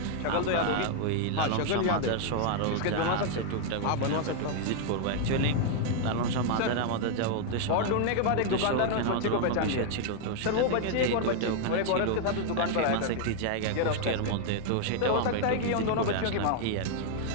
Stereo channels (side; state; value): both; different; correlation 0.00